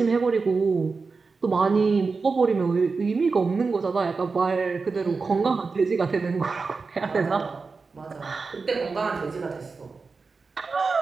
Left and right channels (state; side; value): quieter; left; 4.4 dB